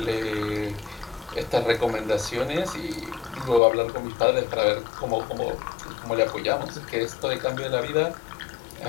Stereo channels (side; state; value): right; drops out; at 3.6 s